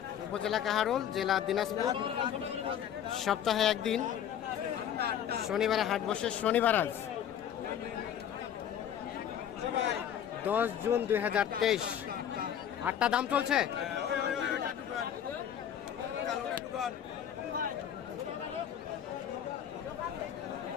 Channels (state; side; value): quieter; right; 9.6 dB